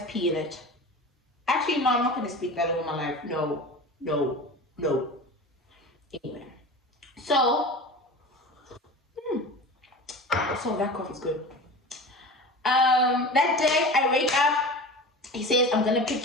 pee in it. Actually, no, I'm not going to speak that over my life. No. Anyway, so that coffee's good. That day I wake up, he says, I'm gonna pick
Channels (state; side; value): normal; both; correlation 0.33